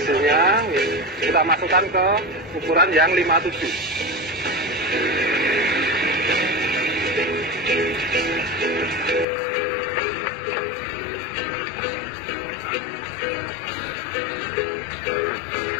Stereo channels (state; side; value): drops out; right; at 9.2 s